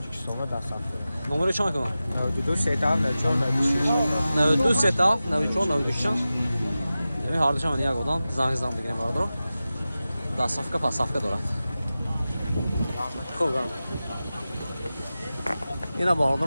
da sattı. نمره چند کنم 92 sedan ve çor 96. 92 ستا 94 96 یعنی هر دوشم یک آدم زنگ زدم بگیریم باردار ده صفحه پس صفحه دارد خوب گرم اینا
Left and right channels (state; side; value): inverted; both; correlation -0.95